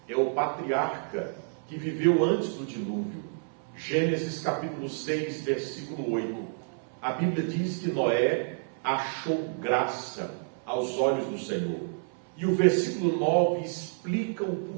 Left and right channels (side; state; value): left; silent; 58 dB below the other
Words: é o patriarca que viveu antes do dilúvio. Gênesis capítulo 6, versículo 8. A Bíblia diz que Noé achou graça aos olhos do Senhor. E o versículo 9 explica o